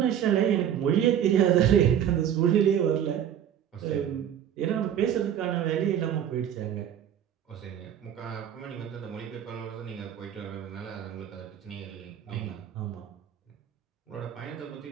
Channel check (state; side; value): quieter; left; 9.7 dB